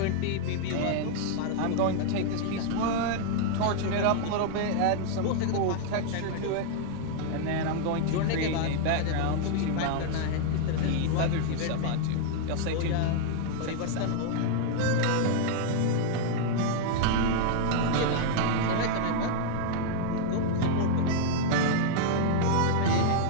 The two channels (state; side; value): different; both; correlation 0.00